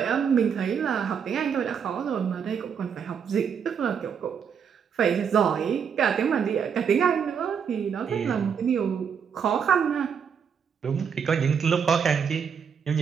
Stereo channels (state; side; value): quieter; left; 7.1 dB